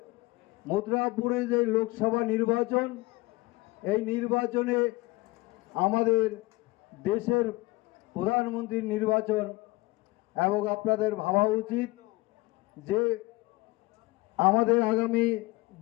মথুরাপুরে যে লোকসভা নির্বাচন, এই নির্বাচনে আমাদের দেশের প্রধানমন্ত্রীর নির্বাচন, এবং আপনাদের ভাবা উচিত যে আমাদের আগামী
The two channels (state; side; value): quieter; right; 21.6 dB